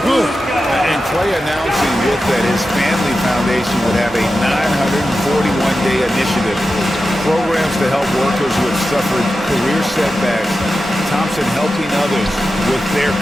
good. And Klay announcing with that his family foundation would have a 941-day initiative. Programs to help workers who have suffered career setbacks. Thompson helping others with their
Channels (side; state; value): both; normal; correlation 0.92